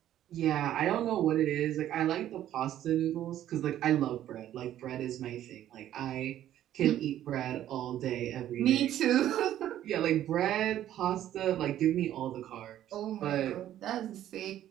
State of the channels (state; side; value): quieter; left; 12.1 dB